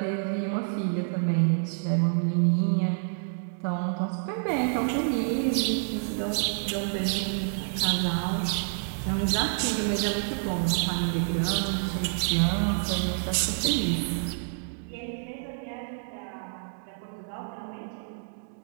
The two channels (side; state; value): left; silent; digital silence